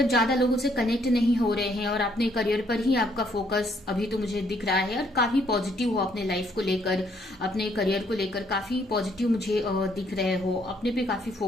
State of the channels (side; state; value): both; normal; correlation 0.68